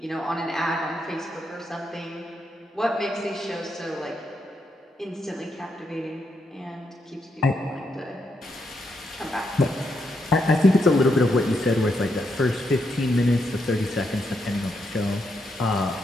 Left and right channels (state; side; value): normal; both; correlation 0.80